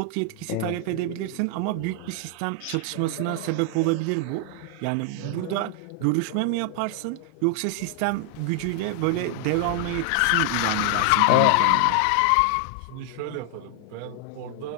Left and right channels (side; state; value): both; different; correlation 0.00